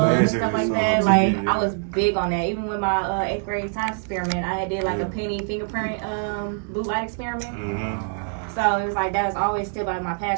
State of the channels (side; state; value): left; silent; digital silence